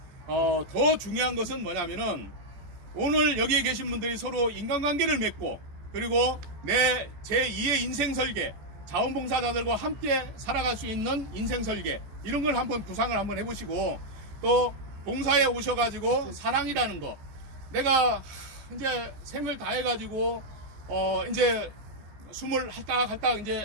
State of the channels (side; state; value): left; late; 14 ms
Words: 더 중요한 것은 뭐냐면은 오늘 여기에 계신 분들이 서로 인간관계를 맺고 그리고 제 2의 인생 설계 자원봉사자들과 함께 살아갈 수 있는 인생 설계 이런 걸 한번 구상을 한번 해보시고 또 봉사에 오셔가지고 사랑이라는 거 내가 이제 생을 다 해가지고 이제 숨을 할딱할딱